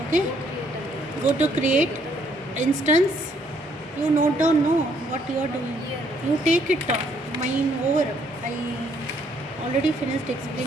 Okay, go to create instance. You note down what you are doing. You take it down. Mine over. I already finished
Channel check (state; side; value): normal; both; correlation 0.67